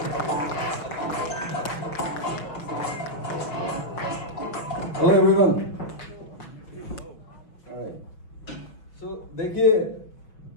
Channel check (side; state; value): right; late; 6.0 ms